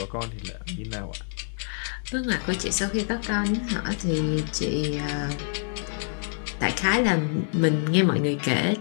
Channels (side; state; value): right; silent; digital silence